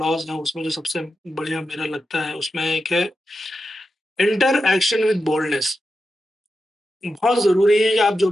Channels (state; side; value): normal; both; correlation 0.89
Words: हैं, उसमें जो सबसे बढ़िया मेरा लगता है, उसमें एक है इंटर एक्शन विद बोल्डनेस। बहुत ज़रूरी है कि आप जो